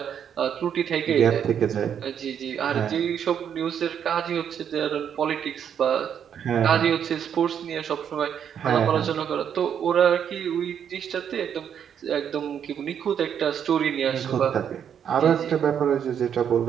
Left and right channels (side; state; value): left; quieter; 8.5 dB